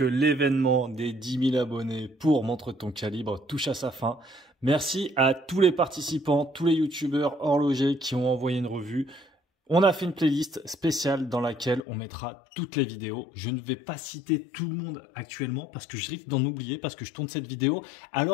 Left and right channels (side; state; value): right; drops out; at 11.8 s